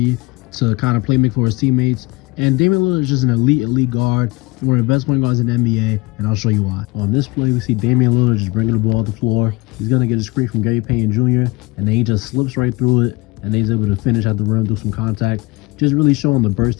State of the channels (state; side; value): quieter; right; 23.4 dB